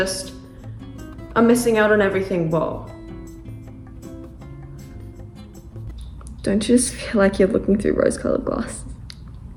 I'm missing out on everything. Whoa. Don't you just feel like you're looking through rose-colored glasses?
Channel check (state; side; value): identical; both; correlation 1.00